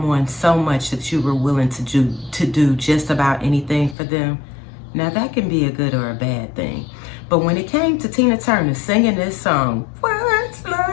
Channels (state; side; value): drops out; right; at 4.0 s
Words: so much that you were willing to do just about anything for them? Now that can be a good or a bad thing. But when it came to Tina Turner singing this song, what's